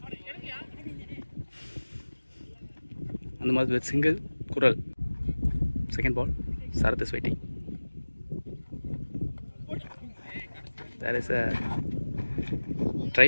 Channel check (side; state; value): both; inverted; correlation -1.00